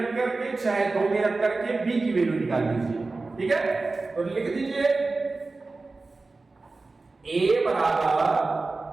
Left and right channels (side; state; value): left; quieter; 3.6 dB